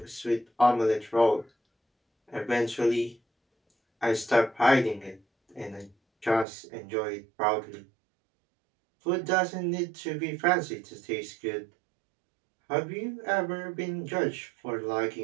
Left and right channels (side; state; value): left; drops out; at 6.5 s